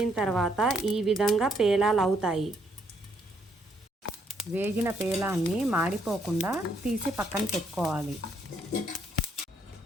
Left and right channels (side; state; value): both; normal; correlation 0.71